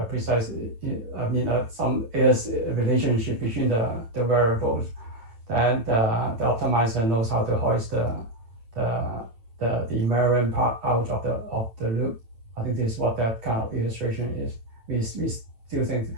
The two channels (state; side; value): late; left; 9.0 ms